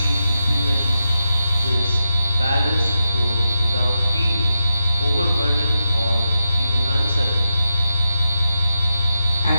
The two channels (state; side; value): inverted; both; correlation -0.88